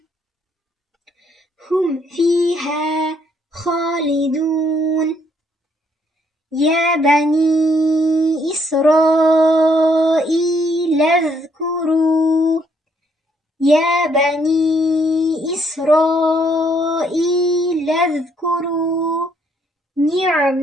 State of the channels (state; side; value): normal; both; correlation 0.69